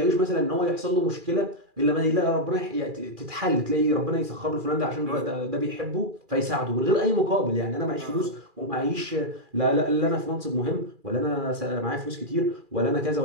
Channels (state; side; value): late; left; 2.4 ms